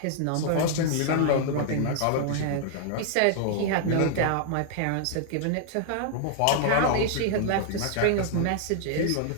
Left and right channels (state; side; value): different; both; correlation 0.00